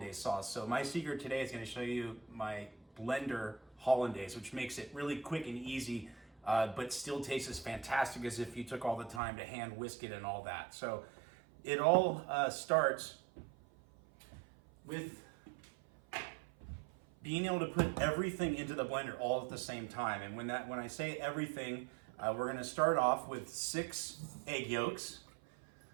sauce. So my secret today is going to show you my blender hollandaise, which makes it really quick and easy, but still tastes as fantastic as if you took all the time to hand whisk it and all that. So it all starts with being able to put everything into the blender all at the same time. And when I say everything, we're going to start off with 6 egg yolks,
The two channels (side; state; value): left; drops out; at 9.2 s